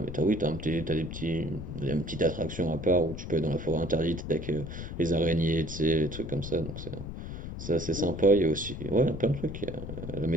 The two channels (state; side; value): noise; left; rumble, 8 dB below the sound